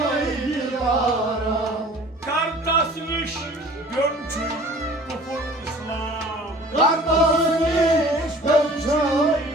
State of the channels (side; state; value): both; normal; correlation 0.47